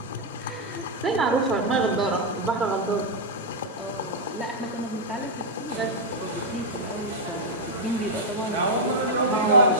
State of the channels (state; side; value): normal; both; correlation -0.03